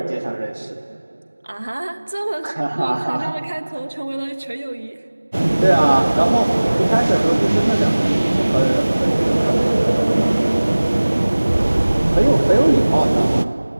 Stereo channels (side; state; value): both; inverted; correlation -1.00